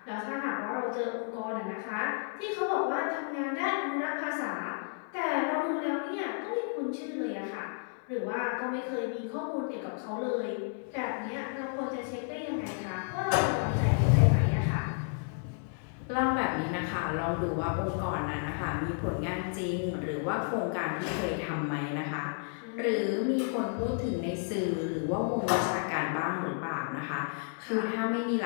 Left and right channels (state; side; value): silent; right; 57 dB below the other